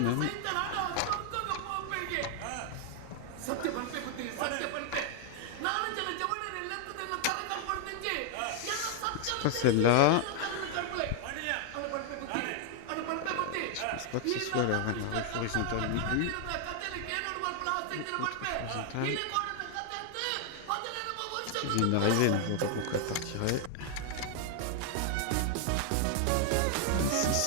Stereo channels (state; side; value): different; both; correlation 0.00